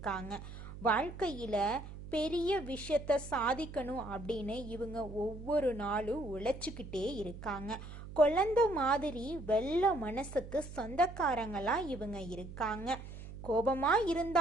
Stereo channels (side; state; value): right; noise; hum, 12 dB below the sound